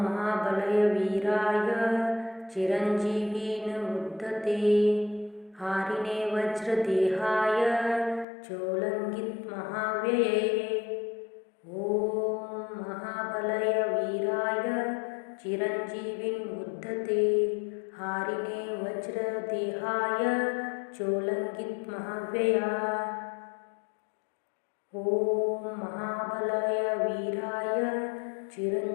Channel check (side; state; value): right; drops out; at 8.2 s